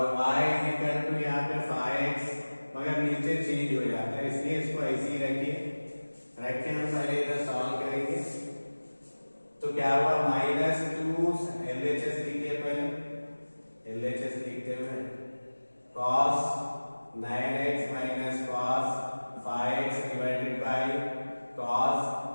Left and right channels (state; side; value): inverted; both; correlation -1.00